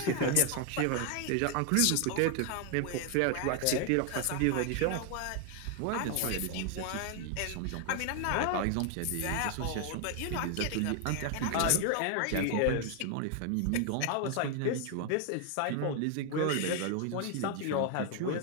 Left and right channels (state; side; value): different; both; correlation 0.00